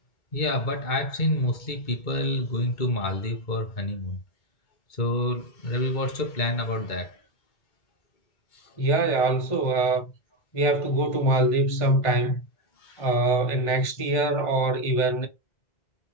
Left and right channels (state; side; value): late; right; 2.2 ms